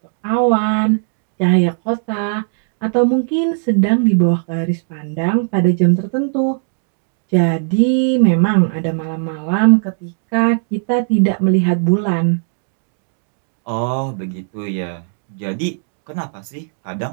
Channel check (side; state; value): left; silent; digital silence